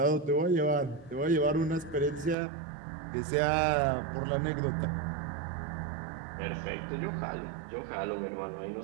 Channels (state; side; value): drops out; left; at 2.4 s